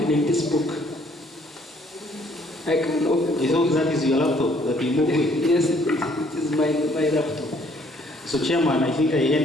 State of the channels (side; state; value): both; normal; correlation 0.63